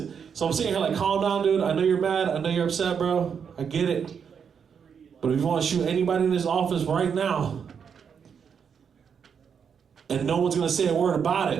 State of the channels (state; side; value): quieter; left; 7.0 dB